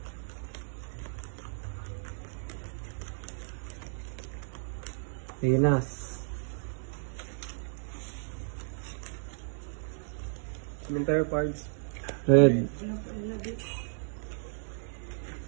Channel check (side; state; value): left; silent; digital silence